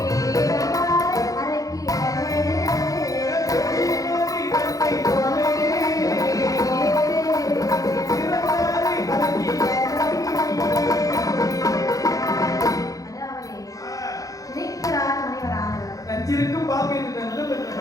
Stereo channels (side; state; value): right; late; 0.17 ms